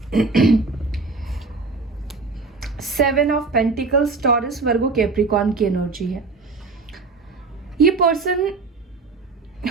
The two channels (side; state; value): left; quieter; 4.0 dB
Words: Seven of pentacles, taurus, Virgo, Capricorn की एनर्जी है। ये पर्सन